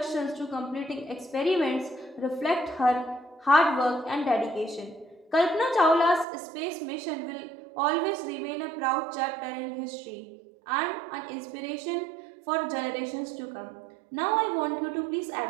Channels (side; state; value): left; drops out; at 6.2 s